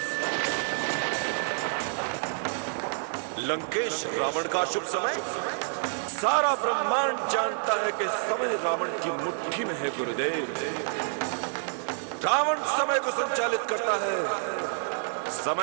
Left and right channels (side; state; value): left; silent; digital silence